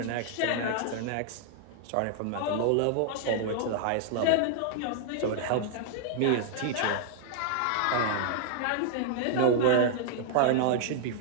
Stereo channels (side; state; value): both; different; correlation -0.01